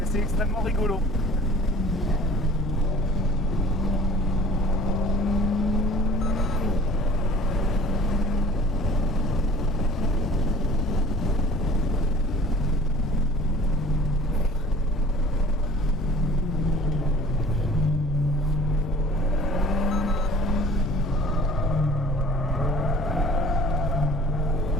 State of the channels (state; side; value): normal; both; correlation 0.48